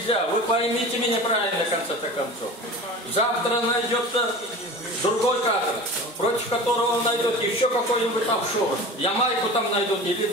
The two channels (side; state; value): both; normal; correlation 0.35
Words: Вы поймите меня правильно, в конце-то концов. Завтра найдется другой кадр, против которого он найдет еще какой-нибудь офшор. Ямайку там найдут, или